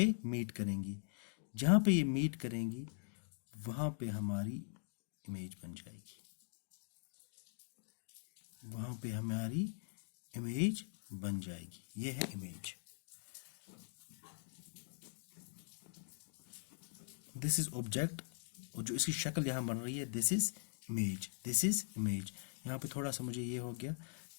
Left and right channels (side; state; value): right; silent; digital silence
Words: मीट करेंगी. जहाँ पे ये मीट करेंगी वहाँ पे हमारी इमेज बन जाएगी, वहाँ पे हमारी इमेज बन जाएगी. ये है इमेज. दिस इज ऑब्जेक्ट, और जो इसकी शक्ल यहाँ बन रही है, दिस इज इमेज. यहाँ पे थोड़ा सा मुझे ये हो गया